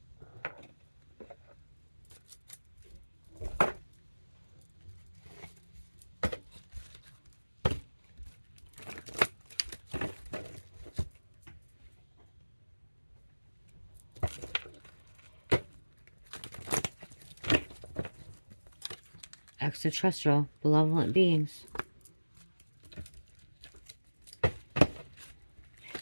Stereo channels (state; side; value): inverted; both; correlation -1.00